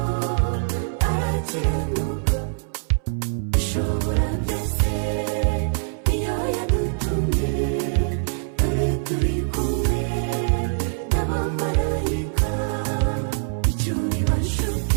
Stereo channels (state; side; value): silent; left; 63 dB below the other